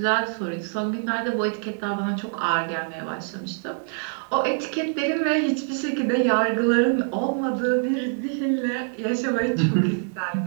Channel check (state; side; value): silent; left; 62 dB below the other